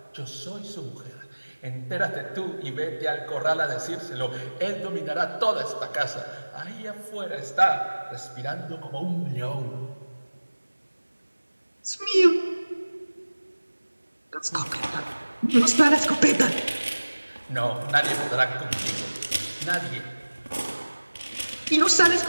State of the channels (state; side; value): inverted; both; correlation -1.00